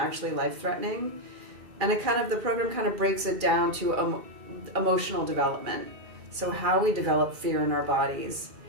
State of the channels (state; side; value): late; left; 2.4 ms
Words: life-threatening. And the program kind of breaks it down to emotional development. So how we develop fear in our bodies